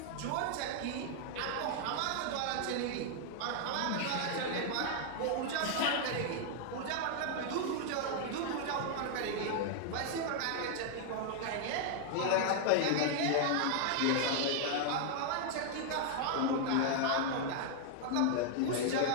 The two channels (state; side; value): different; both; correlation 0.00